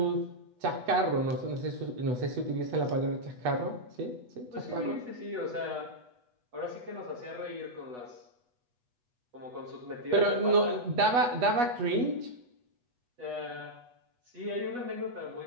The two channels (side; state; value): left; late; 8.2 ms